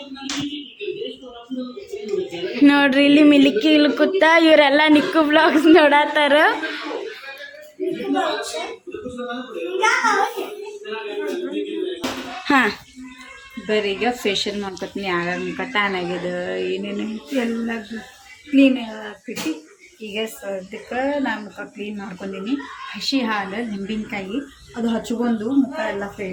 ನೋಡ್ರಿ ಇಲ್ಲಿ ಮಿಲ್ಕಿ ಇಲ್ಲಿ ಕೂತ ಇವರೆಲ್ಲ ನಿಕ್ಕು ಬ್ಲಾಗ್ಸ್ ನೋಡತ್ತಾರ ಹಾ ಬರ್ರಿ ಈಗ ಫೇಶಿಯಲ್ ಮಾಡ್ಕೊತೀನಿ ಆಗಾಗ ಟ್ಯಾನ್ ಆಗ್ಯದ ಏನೇನು ಎಲ್ಲ ಕ್ಲೀನ್ ಆಗ್ತೈತಿ ಈಗ ಸದ್ಯಕ್ಕೆ ನಾನು ಮುಖ ಕ್ಲೀನ್ ಮಾಡ್ಕೊಂಡೀನಿ ಹಸಿ ಹಾಲು ನಿಂಬೆಕಾಯಿ ಅದು ಹಚ್ಕೊಂಡು ಮುಖ ಎಲ್ಲ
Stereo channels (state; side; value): identical; both; correlation 1.00